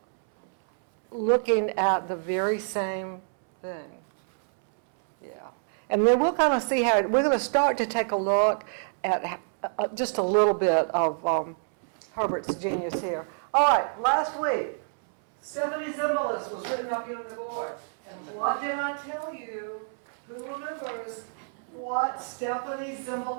looking at the very same thing. Yeah. And then we'll kind of see how, we're going to start to take a look at just a little bit of Herbert's genius here. All right, last week, Stephanie Zimbalist was written up here on the board. And what did I tell you? Who remembers what Stephanie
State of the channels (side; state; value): left; silent; 60 dB below the other